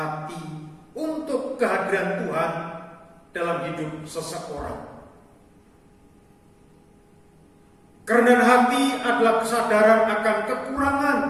untuk kehadiran Tuhan dalam hidup seseorang. Kerendahan hati adalah kesadaran akan kekurangan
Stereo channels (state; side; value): identical; both; correlation 1.00